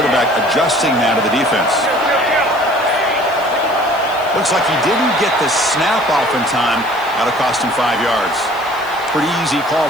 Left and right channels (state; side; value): noise; left; hiss, 22 dB below the sound